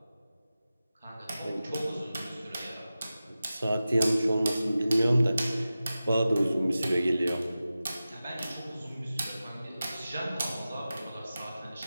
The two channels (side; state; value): both; inverted; correlation -0.95